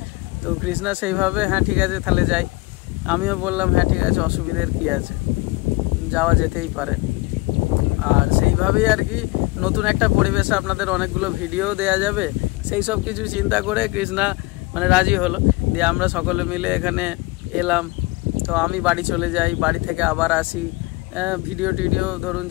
তো কৃষ্ণা সেইভাবে হ্যাঁ ঠিক আছে তাহলে যাই, আমিও বললাম হ্যাঁ ঠিক আছে, অসুবিধার কি আছে, যাওয়া যেতেই পারে। আর সেইভাবেই আর কি নতুন একটা পরিবেশে আপনাদের অনেকগুলো ভিডিও দেয়া যাবে, সেই সব কিছু চিন্তা করে কৃষ্ণা মানে রাজি হলো। দিয়ে আমরা সকলে মিলে এখানে এলাম। তো আমি বাড়ি চলে যাই, বাড়ি থেকে আবার আসি, ভিডিও টিডিও ধরুন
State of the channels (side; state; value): right; quieter; 22.9 dB